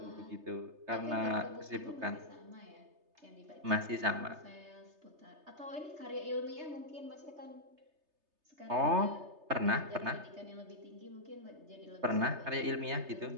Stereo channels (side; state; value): left; late; 3.3 ms